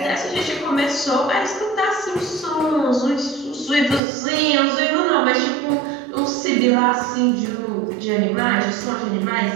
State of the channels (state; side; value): drops out; left; at 4.0 s